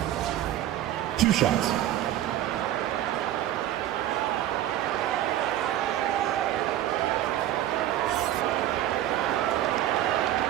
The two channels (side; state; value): left; quieter; 12.8 dB